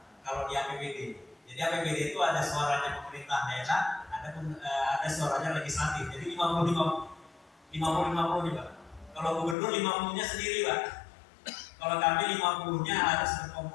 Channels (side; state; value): right; drops out; at 9.6 s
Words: kalau di APBD. Jadi APBD itu ada suaranya pemerintah daerah, ada suaranya legislatif. Jadi 50-50 nih Pak. Kalau gubernur 50-nya sendiri Pak. Kalau kami 50-nya harus